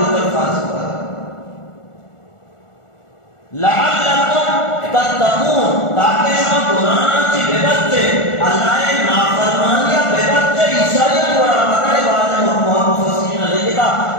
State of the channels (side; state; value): right; late; 1.4 ms